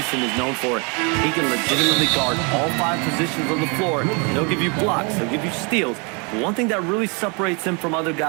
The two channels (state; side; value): quieter; left; 32.6 dB